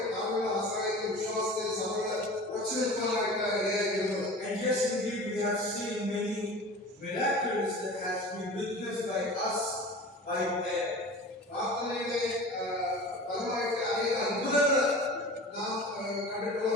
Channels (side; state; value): both; normal; correlation 0.37